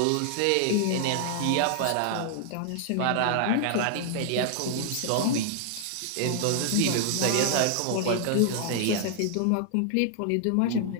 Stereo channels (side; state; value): both; different; correlation 0.00